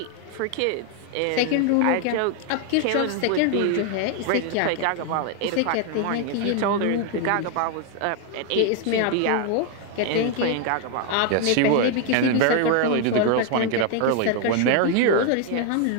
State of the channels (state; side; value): different; both; correlation 0.01